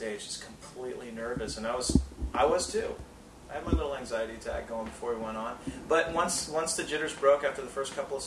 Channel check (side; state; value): both; identical; correlation 1.00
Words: just completely nervous. And I was too. I had my little anxiety attack going before we went on. But once the jitters broke after the first couple of